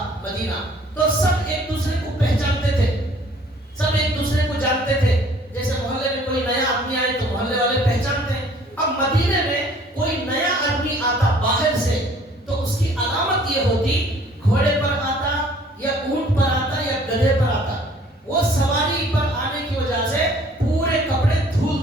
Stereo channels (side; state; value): both; normal; correlation 0.56